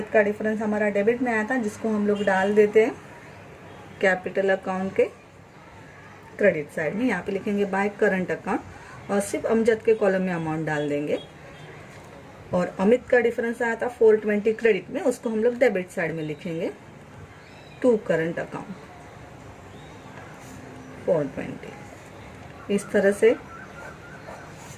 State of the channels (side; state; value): both; identical; correlation 1.00